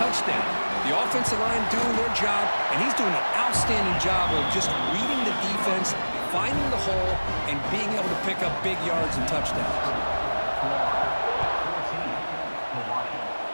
The offensive line doing their job, and he's doing an outstanding job of just reading the defense, finding the hole, and being able to pick up big yards and touchdowns.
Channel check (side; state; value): both; inverted; correlation -1.00